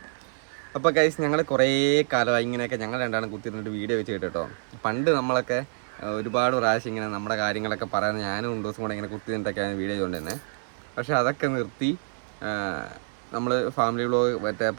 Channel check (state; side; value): silent; left; 60 dB below the other